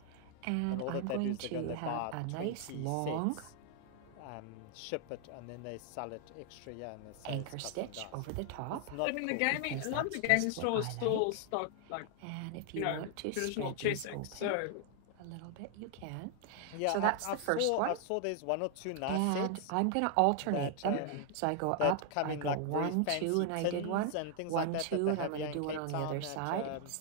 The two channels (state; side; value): different; both; correlation 0.00